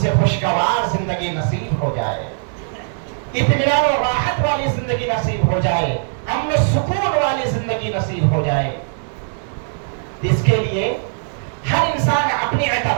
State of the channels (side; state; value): left; silent; digital silence